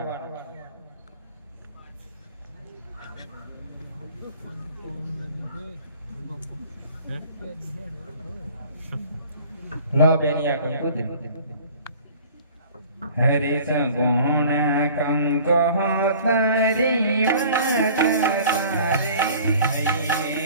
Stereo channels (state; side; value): inverted; both; correlation -0.48